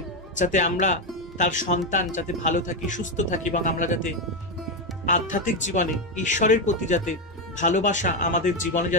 যাতে আমরা তার সন্তান যাতে ভালো থাকি, সুস্থ থাকি এবং আমরা যাতে আধ্যাত্মিক জীবনে ঈশ্বরের প্রতি যাতে ভালোবাসা আমাদের জীবনে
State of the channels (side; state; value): both; normal; correlation 0.08